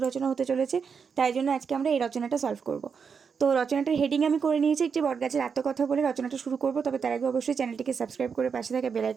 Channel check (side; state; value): left; quieter; 6.1 dB